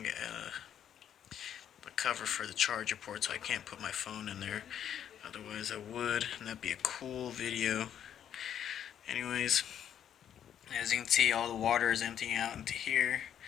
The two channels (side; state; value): right; quieter; 9.6 dB